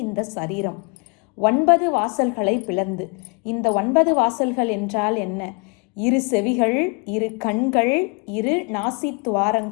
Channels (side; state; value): right; quieter; 33.0 dB